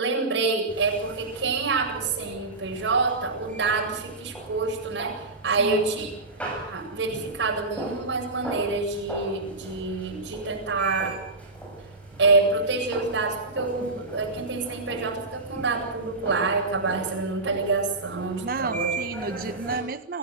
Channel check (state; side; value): quieter; left; 3.3 dB